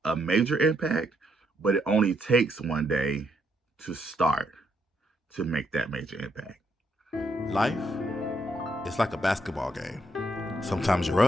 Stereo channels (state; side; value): normal; both; correlation 0.76